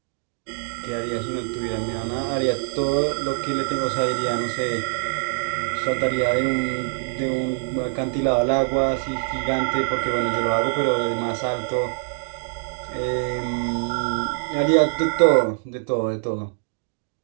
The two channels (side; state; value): left; silent; digital silence